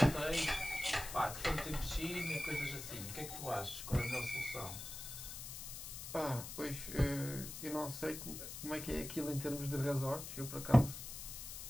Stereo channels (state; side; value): noise; left; hiss, 8 dB below the sound